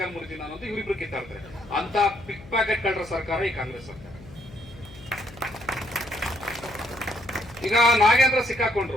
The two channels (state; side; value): noise; left; hum, 19 dB below the sound